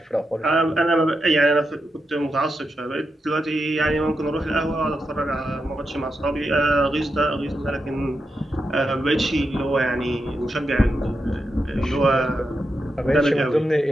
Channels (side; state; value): both; normal; correlation 0.86